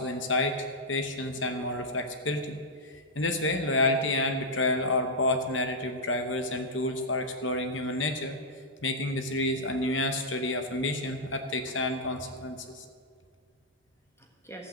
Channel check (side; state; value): both; normal; correlation -0.07